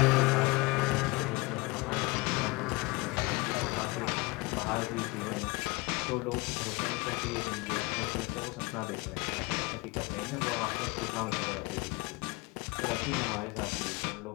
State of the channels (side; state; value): right; quieter; 24.8 dB